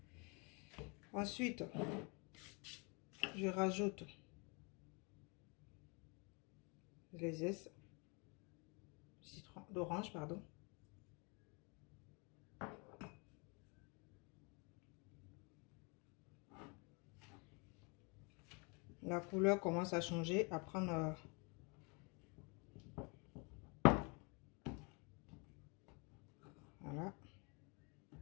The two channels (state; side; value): quieter; right; 31.8 dB